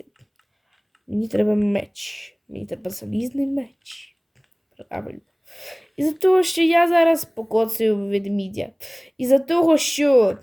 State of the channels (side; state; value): both; identical; correlation 1.00